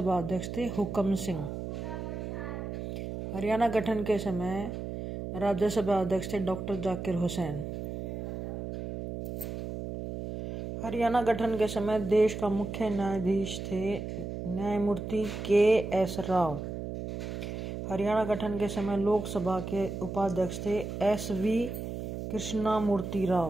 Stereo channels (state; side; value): noise; right; hum, 6 dB below the sound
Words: अध्यक्ष थे हुकम सिंह। हरियाणा गठन के समय राज्यसभा अध्यक्ष थे डॉक्टर जाकिर हुसैन। हरियाणा गठन के समय देश का मुख्य न्यायाधीश थे न्यायमूर्ति के.एस. राव। हरियाणा गठन के समय लोकसभा के उपाध्यक्ष थे एस.वी. कृष्णमूर्ति